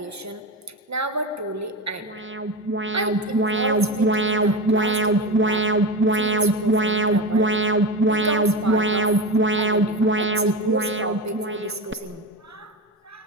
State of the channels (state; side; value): normal; both; correlation 0.22